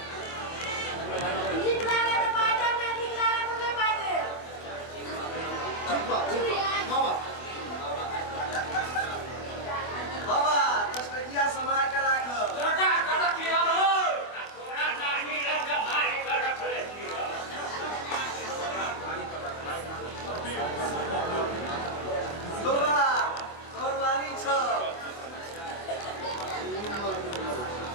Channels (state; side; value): late; right; 24 ms